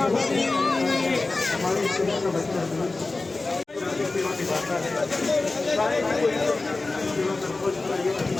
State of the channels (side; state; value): right; quieter; 3.4 dB